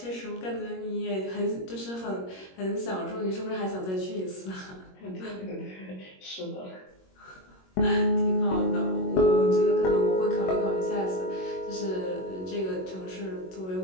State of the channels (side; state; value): right; late; 21 ms